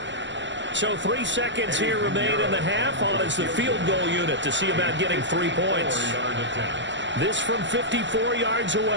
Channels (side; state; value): left; late; 0.54 ms